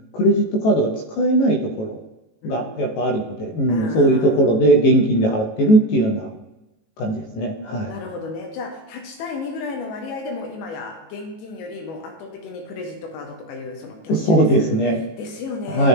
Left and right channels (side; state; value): right; late; 18 ms